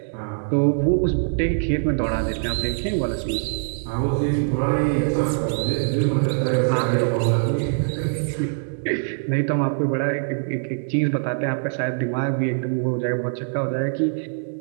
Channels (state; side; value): silent; left; digital silence